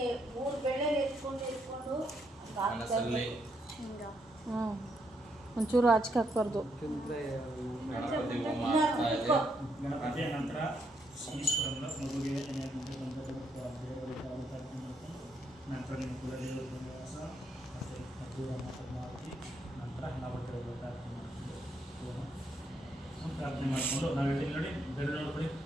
ಒಂಚೂರು ಆಚೆ ಹಾಕ್ಬಾರ್ದು. ಗಣಪತಿಯ ನಂತರ ಈಶ್ವರನ ಮಗುವಿಗೆ ಕಡೆಯೂ ಕೂಡ ದೇವರ ಪ್ರವಾಸ ಮತ್ತು ಮಧುರಮ್ಮ ಪದ್ಮಾವತಿ ನಂತರ ನವಗ್ರಹ ಪ್ರಾರ್ಥನೆ ಮಾಡಿಕೊಂಡು ಪ್ರಾರ್ಥನೆ ಮಾಡಿಕೊಂಡು ನಾವು ಹೇಳಿ ನೋಡಿ ಬೆರಳು ನೋಡ್ಬಿಡಿ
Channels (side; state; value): both; normal; correlation 0.76